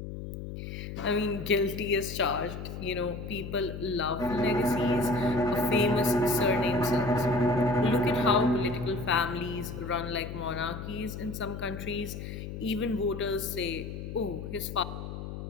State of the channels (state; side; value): noise; left; hum, 8 dB below the sound